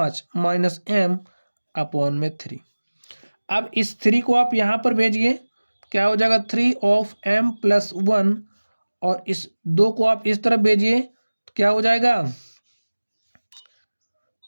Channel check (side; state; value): both; inverted; correlation -1.00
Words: -m/3। अब इस 3 को आप यहाँ पर भेजिए, क्या हो जाएगा 3 of m+1 और इस 2 को आप इस तरफ भेजिए तो क्या हो जाएगा